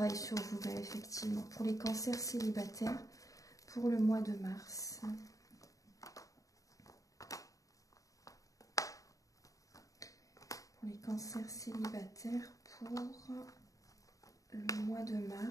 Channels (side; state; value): right; late; 0.16 ms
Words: sur vous-même, effectivement. Pour les cancers célibataires pour le mois de mars. Pour les cancers célibataires pour le mois de